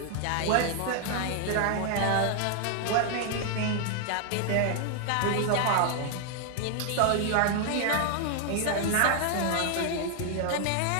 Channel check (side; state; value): both; different; correlation 0.00